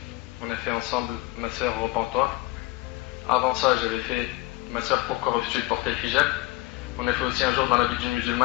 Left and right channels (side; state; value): right; quieter; 19.9 dB